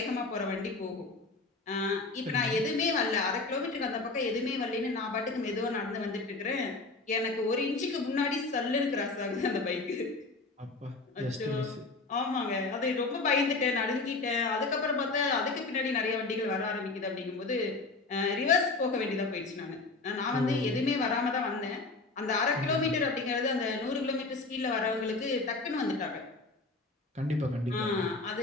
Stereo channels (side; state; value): right; quieter; 3.5 dB